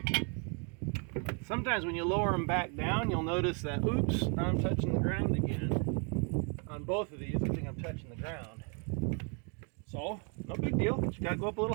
Sometimes when you lower them back down, you'll notice that, oops, now I'm touching the ground again. On both of these, I think I'm touching the ground. So, no big deal, but you gotta go up a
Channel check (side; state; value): left; quieter; 37.5 dB